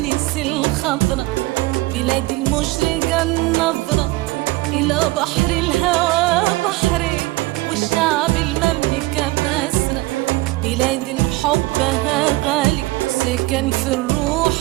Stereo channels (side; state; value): left; quieter; 20.3 dB